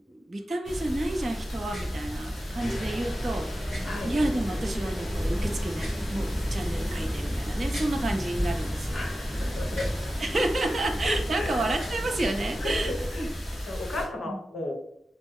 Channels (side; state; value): both; normal; correlation 0.93